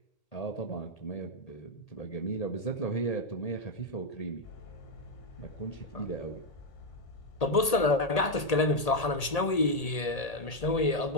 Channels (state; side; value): late; right; 1.8 ms